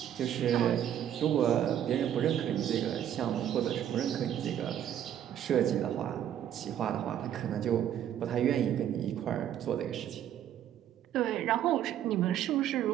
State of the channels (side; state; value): left; quieter; 10.5 dB